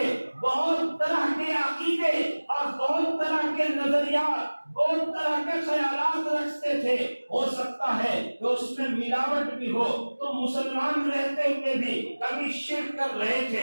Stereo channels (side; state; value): both; inverted; correlation -1.00